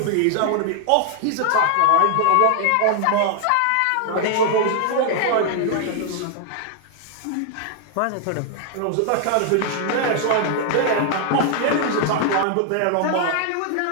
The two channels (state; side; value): different; both; correlation 0.00